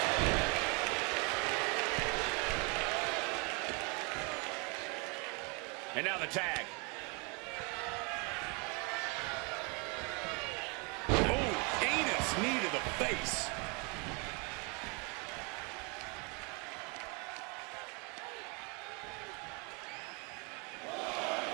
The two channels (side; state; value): left; quieter; 31.6 dB